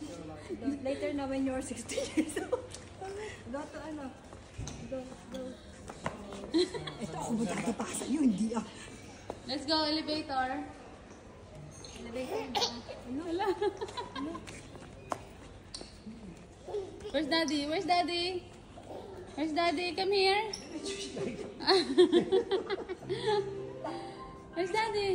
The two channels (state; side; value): identical; both; correlation 1.00